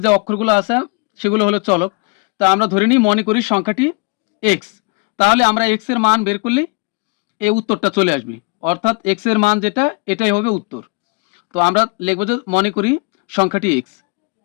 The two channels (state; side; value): quieter; right; 30.2 dB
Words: যে অক্ষরগুলো আছে সেগুলো হলো চলক। তা আমরা ধরে নিই মনে করি সংখ্যাটি এক্স, তাহলে আমরা এক্স এর মান বের করলে এই উত্তরটা চলে আসবে, অর্থাৎ এক্স এর মান যেটা এটাই হবে উত্তর। তো আমরা লিখবো যে মনে করি সংখ্যাটি এক্স।